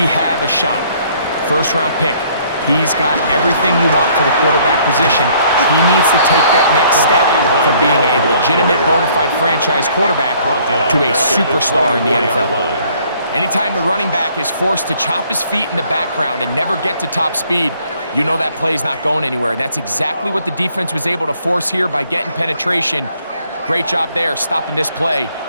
have a shot. First-round pick. He's got everything you want for the quarterback position. He needs to take that next step from being a legitimate bona fide franchise quarterback to a superstar in the NFL. Anytime the running back is forced to chop his feet in the background and never get to top speed, you know that play's not going anywhere. And that's exactly what the defense was able to force here by getting penetration. Great job there, stopping this play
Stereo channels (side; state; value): both; inverted; correlation -0.62